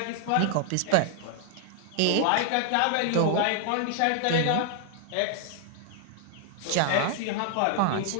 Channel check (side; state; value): both; different; correlation 0.00